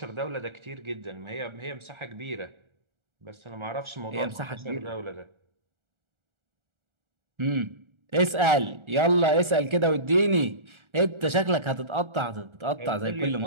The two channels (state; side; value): late; left; 1.4 ms